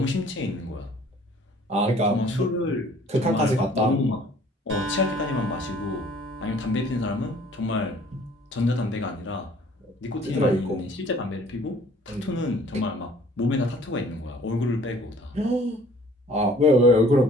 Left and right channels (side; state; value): both; normal; correlation 0.54